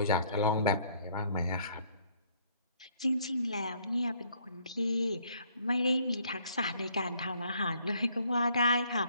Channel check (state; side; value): inverted; both; correlation -0.64